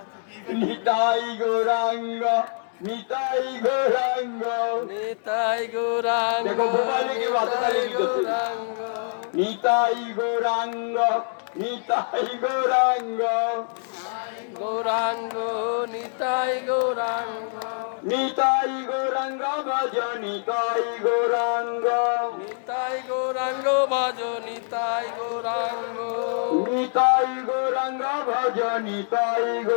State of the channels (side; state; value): right; silent; 62 dB below the other